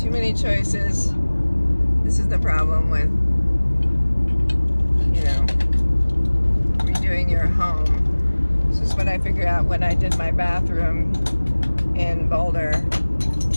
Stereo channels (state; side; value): inverted; both; correlation -1.00